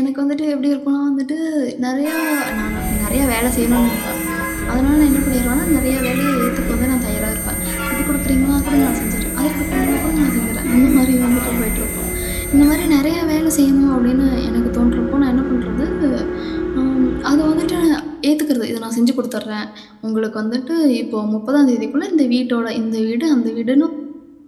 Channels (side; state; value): both; identical; correlation 1.00